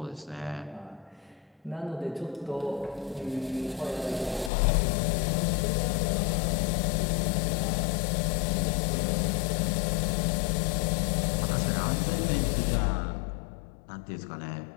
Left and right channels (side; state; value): right; drops out; at 4.5 s